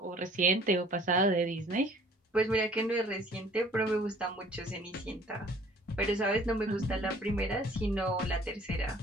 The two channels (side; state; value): both; normal; correlation 0.53